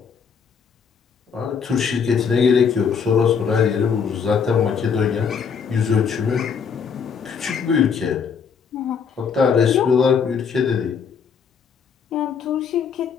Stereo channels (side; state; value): right; quieter; 6.4 dB